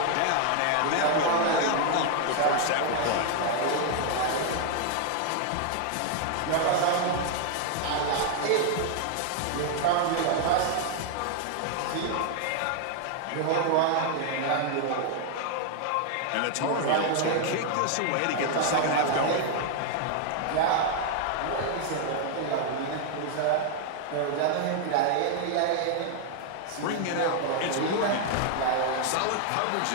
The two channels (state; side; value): different; both; correlation 0.00